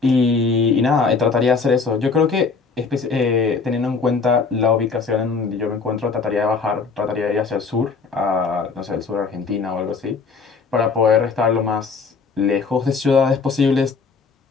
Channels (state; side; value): quieter; right; 4.8 dB